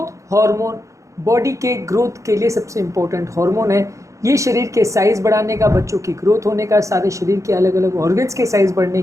hormone body के growth के लिए सबसे इम्पोर्टेंट हार्मोन है। ये शरीर के साइज़ बढ़ाने का, बच्चों की ग्रोथ होने का, सारे शरीर के अलग अलग ऑर्गन्स के साइज़ बढ़ने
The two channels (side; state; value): left; late; 0.15 ms